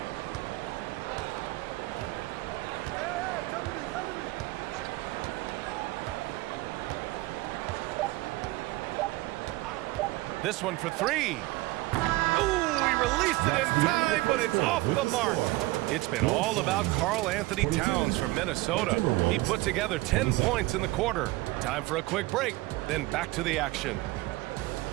This one for 3. Ooh, he released it in time, but it's off the mark. It's been all about Karl Anthony Towns from Minnesota. He put together 10 points in the quarter. Time for a quick break, then back to the action.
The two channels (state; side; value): quieter; left; 20.2 dB